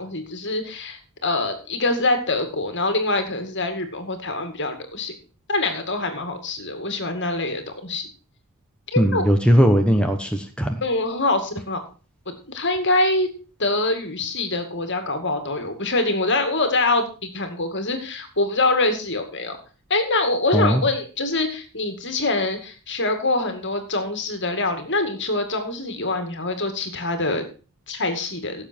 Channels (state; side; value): normal; both; correlation 0.00